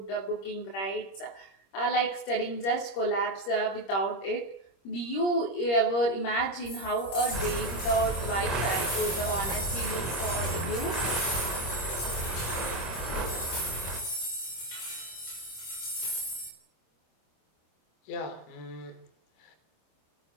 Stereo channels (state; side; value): late; right; 26 ms